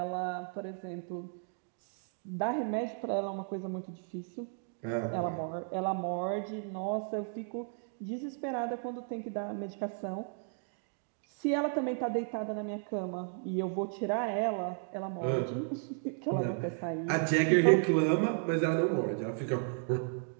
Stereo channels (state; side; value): silent; left; 55 dB below the other